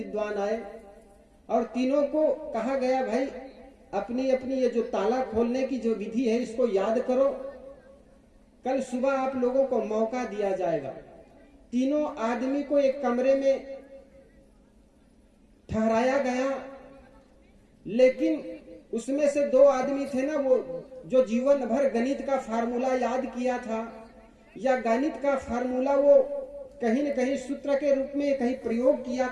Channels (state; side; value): identical; both; correlation 1.00